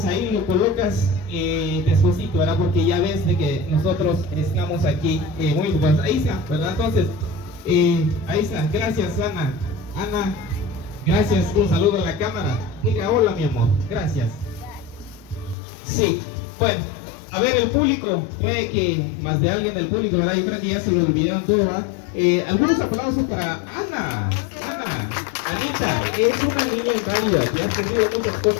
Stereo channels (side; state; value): right; drops out; at 15.6 s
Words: ahí lo colocas despuesito, ¿verdad? Porque ya ves de que nosotros estamos aquí muy pues, ahí está, ¿verdad? Entonces, ahí está, gracias Ana. Ana, gracias, un saludo a la cámara. Diga hola mi amor, gracias. Sí, bueno, a ver el público, puede que más de alguien del público, ¿verdad? Yo creo que ya se lo olvidaron todo, ¿verdad? Algunos aplausos para Ana. Anita, es una niña inválida que ha tenido muchas